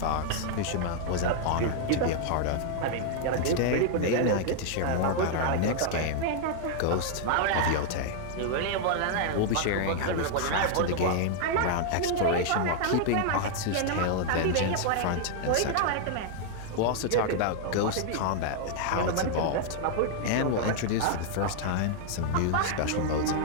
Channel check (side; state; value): both; different; correlation 0.00